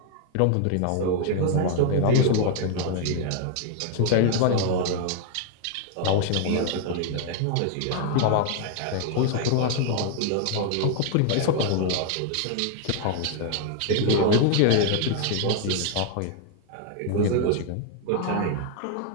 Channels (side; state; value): both; different; correlation 0.00